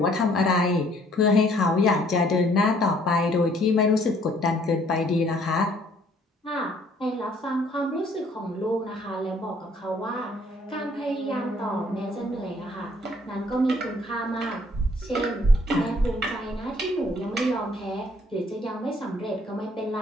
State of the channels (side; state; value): both; normal; correlation 0.62